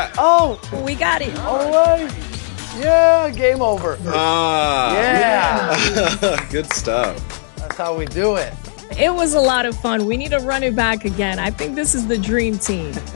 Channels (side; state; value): right; silent; digital silence